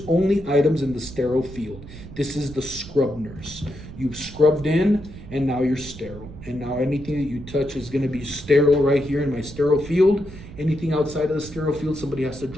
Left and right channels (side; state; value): right; noise; rumble, 14 dB below the sound